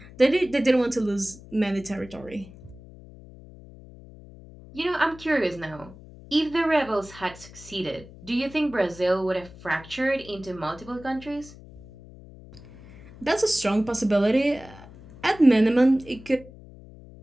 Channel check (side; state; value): left; noise; hum, 19 dB below the sound